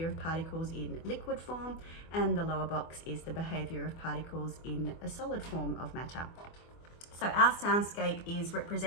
of particles in liquid form, and the lower box is the behaviour of particles in a solid form of matter. So our soundscape is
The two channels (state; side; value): late; right; 24 ms